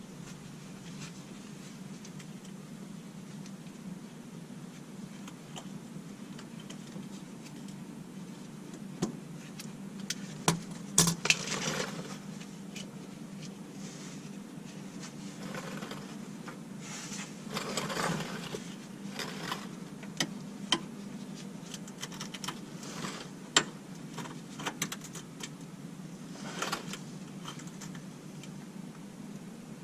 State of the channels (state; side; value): identical; both; correlation 1.00